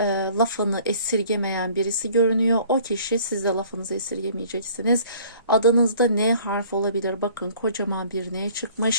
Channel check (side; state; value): both; inverted; correlation -0.53